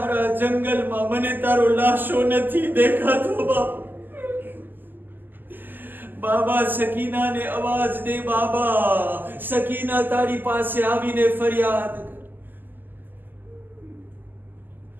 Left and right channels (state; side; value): late; left; 0.090 ms